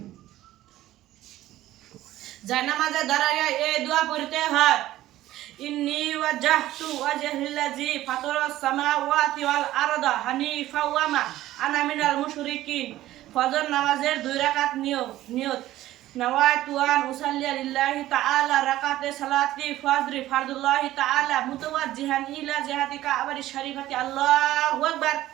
জানামাজে দাঁড়াইয়া এই দোয়া পড়তে হয়। ইন্নী ওয়াজজাহতু ওয়াজহিল্লাযী ফাতারাস সামাওয়াতি ওয়াল আরদা হানিফা ওয়া মা আনা মিনাল মুশরিকিন। ফজর নামাজের 2 রাকাত নিয়ত নাওয়াইতু আন উসাল্লিয়া লিল্লাহি তাআলা রাকাতে সালাতি ফজরি ফারদুল্লাহি তাআলা মুতাওয়াজ্জিহান ইলা জিহাতি কাবারি শরীফাতি। আল্লাহু আকবার।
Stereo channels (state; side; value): quieter; left; 14.8 dB